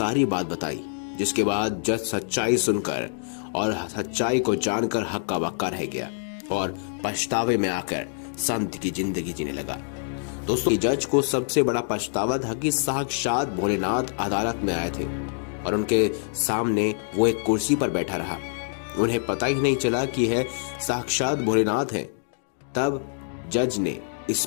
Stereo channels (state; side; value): silent; right; digital silence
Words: बात बताई। जिसके बाद जज सच्चाई सुनकर और सच्चाई को जानकर हक्का बक्का रह गया और पछतावे में आकर संत की जिंदगी जीने लगा। दोस्तों, जज को सबसे बड़ा पछतावा था कि साक्षात भोलेनाथ अदालत में आए थे और उनके सामने वो एक कुर्सी पर बैठा रहा। उन्हें पता ही नहीं चला कि यह साक्षात भोलेनाथ है। तब जज ने इस